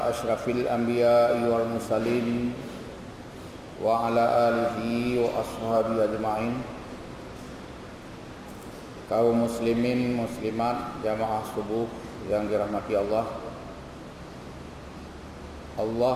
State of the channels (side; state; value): both; identical; correlation 1.00